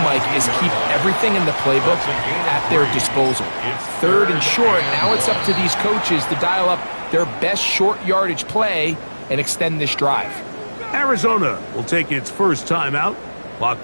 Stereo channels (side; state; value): both; inverted; correlation -1.00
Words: Mike, is keep everything in the playbook at their disposal. 3rd and short, now it's up to these coaches to dial up their best short yardage play and extend this drive. Arizona will take its first timeout. Clock